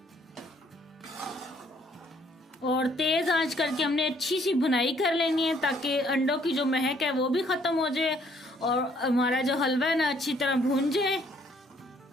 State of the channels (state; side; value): normal; both; correlation 0.64